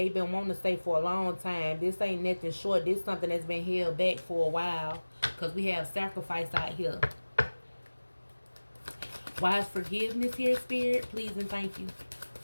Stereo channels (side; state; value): both; inverted; correlation -1.00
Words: been wanting to say for a long time. This ain't nothing short. This is something that's been held back for a while because we have sacrifice out here. Why is forgiveness here, Spirit? Please and thank you.